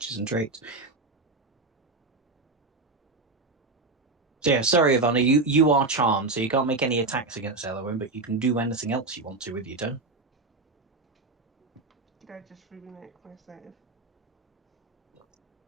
and traits. So yeah, sorry Ivana, you are charmed, so you can't make any attacks against Elowin, but you can do anything else you want to with your turn. Did I just remake my save?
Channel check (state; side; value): quieter; left; 3.5 dB